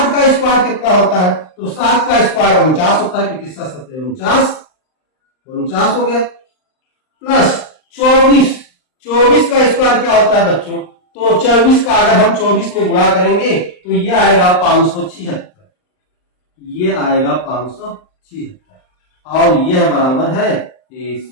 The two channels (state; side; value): late; right; 39 ms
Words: का स्क्वायर कितना होता है? तो 7 का स्क्वायर 49 होता है, क्योंकि 7 7 49 हो गया, प्लस 24 का स्क्वायर क्या होता है बच्चों? तो 24 का अगर हम 24 में गुणा करेंगे तो ये आएगा 576, ये आएगा 576 और यह बराबर है AC